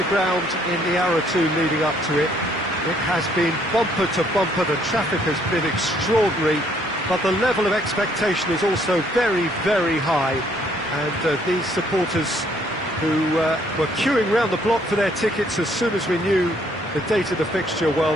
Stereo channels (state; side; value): normal; both; correlation 0.66